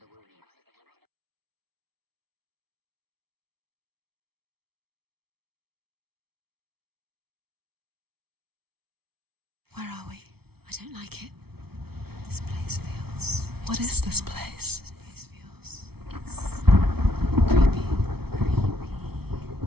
Where are we? I don't like it. This place feels... What is this place? This place feels... It's... creepy. Creepy.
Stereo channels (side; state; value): left; late; 0.96 ms